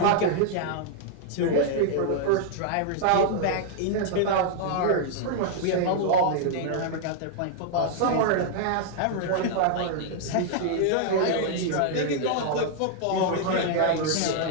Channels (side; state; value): both; different; correlation -0.01